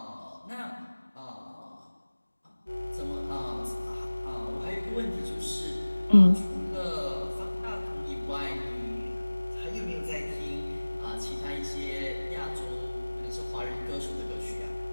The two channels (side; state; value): both; inverted; correlation -1.00